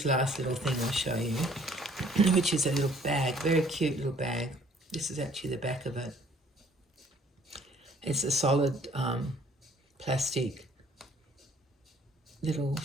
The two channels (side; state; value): both; normal; correlation 0.58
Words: last little thing I'll show you, which is a little bag, very cute little bag. This is actually the back of it. It's a solid plastic little